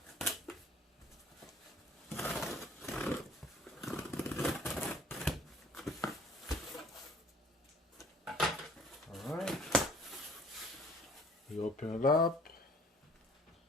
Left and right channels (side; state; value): both; normal; correlation 0.55